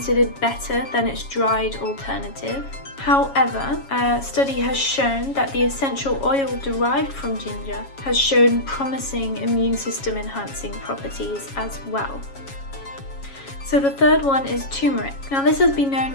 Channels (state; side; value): late; right; 7.3 ms